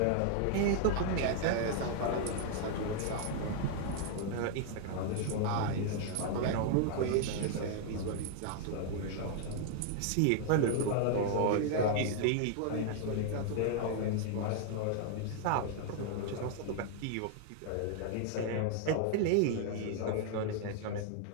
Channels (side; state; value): both; different; correlation 0.00